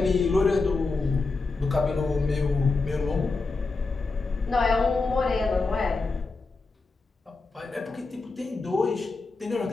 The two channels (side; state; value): right; quieter; 3.8 dB